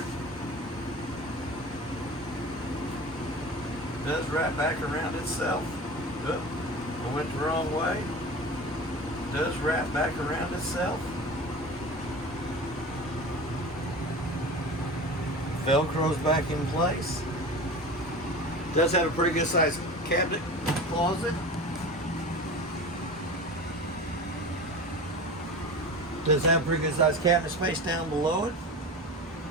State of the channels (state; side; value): normal; both; correlation 0.33